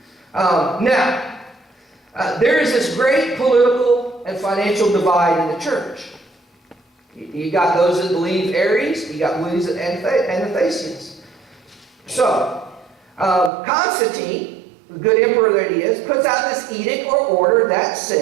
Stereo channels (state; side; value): drops out; left; at 13.5 s